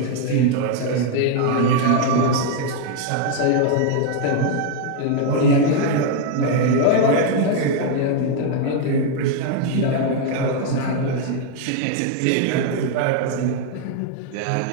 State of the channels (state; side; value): different; both; correlation 0.00